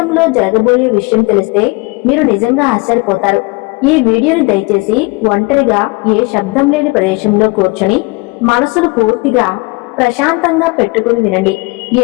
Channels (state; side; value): quieter; right; 26.5 dB